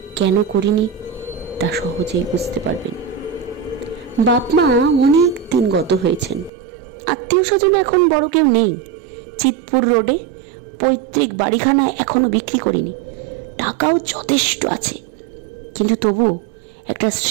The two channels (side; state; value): left; drops out; at 6.5 s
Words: কেন করিনি তা সহজেই বুঝতে পারবেন। বাপ মা অনেক দিন গত হয়েছেন, আত্মীয় স্বজন এখন বড় কেউ নেই। চিতপুর রোডে পৈতৃক বাড়িখানা এখনো বিক্রি করিনি, টাকাও যথেষ্ট আছে, কিন্তু তবু একটা